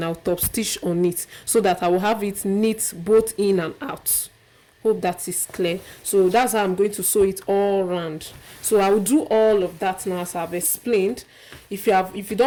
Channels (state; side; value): identical; both; correlation 1.00